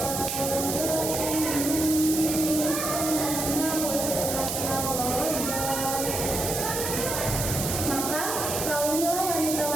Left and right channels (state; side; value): noise; right; hiss, 2 dB below the sound